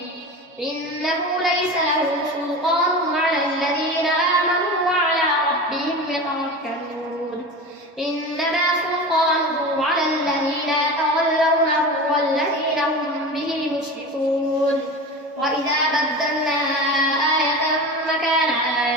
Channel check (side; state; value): both; normal; correlation 0.29